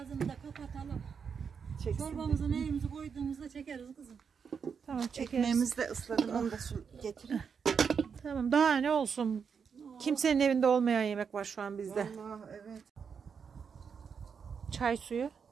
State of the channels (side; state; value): left; quieter; 6.4 dB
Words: da kapatalım. Çorbamızı neyimizi koyduğumuzda çekeriz kızım. Tamam çekeriz. Ekmeğimizi de ısladım. Onu da getirin. Tamam daha ne olsun. Kimsenin evinde olmayan yemek var şu an bizde. Allah evet. Çay suyu